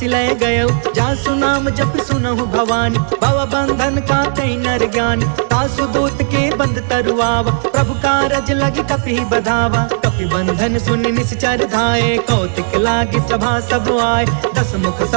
गयउ जासु नाम जप सुनहु भवानी भव बंधन का कई नर ज्ञान तासु दूत के बंध तरुआवा प्रभु कारज लगी कपि बधावा कपि बंधन सुनि निश्चर धाये कौतिक लागी सभा सब आए दस मुख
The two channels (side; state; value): left; silent; 68 dB below the other